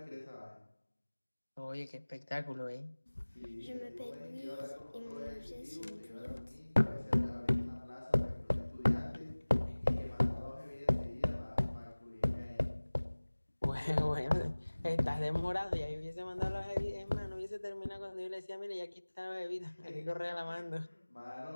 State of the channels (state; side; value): inverted; both; correlation -1.00